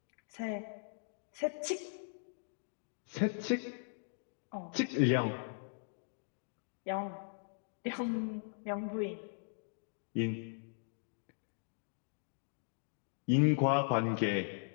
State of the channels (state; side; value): silent; right; digital silence